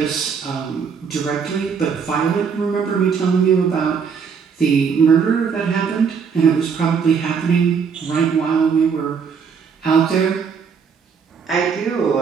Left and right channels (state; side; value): quieter; left; 6.3 dB